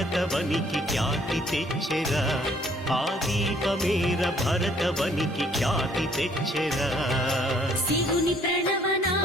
ఖ్యాతి తెచ్చెరా ఆ దీపమేర భరతవనికి ఖ్యాతి తెచ్చెరా శివుని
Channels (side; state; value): both; normal; correlation 0.62